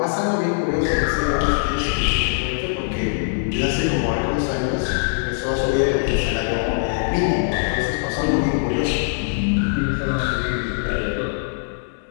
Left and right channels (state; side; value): silent; right; 63 dB below the other